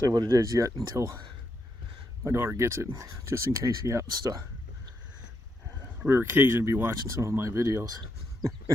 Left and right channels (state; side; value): normal; both; correlation 0.81